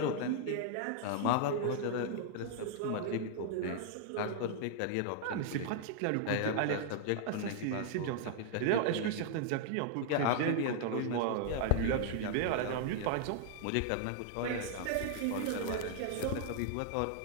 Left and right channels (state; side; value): different; both; correlation -0.01